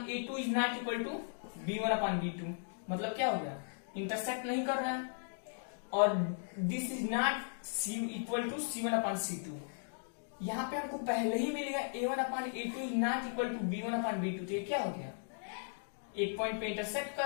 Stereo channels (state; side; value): silent; right; digital silence